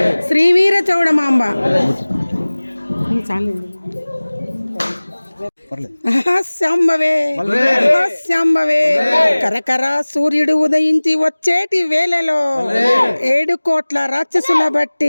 శ్రీవీర చౌడమాంబ. శాంబవే శాంబవే కరకర సూర్యుడు ఉదయించి వచ్చేటి వేళలో 7 కోట్ల రాక్షసుల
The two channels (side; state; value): both; inverted; correlation -1.00